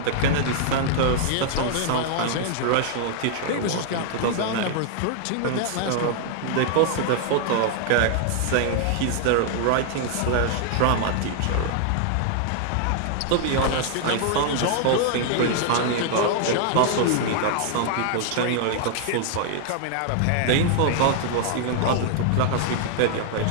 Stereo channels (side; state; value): both; different; correlation 0.00